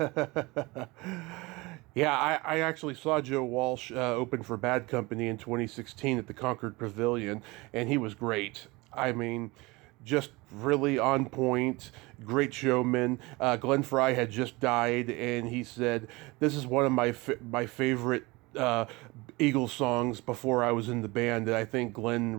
Yeah, I actually saw Joe Walsh open for Bad Company in 2016 at the Concord Pavilion, and he was great. I mean, just really on point, great showman. Glenn Frey had just died, and he said, this is one of my favorite Eagles songs before I was in the band, and I think Glenn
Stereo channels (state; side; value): quieter; left; 23.5 dB